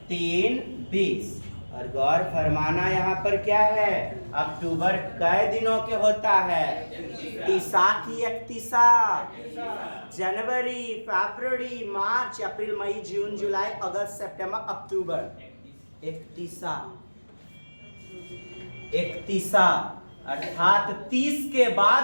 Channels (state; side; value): inverted; both; correlation -1.00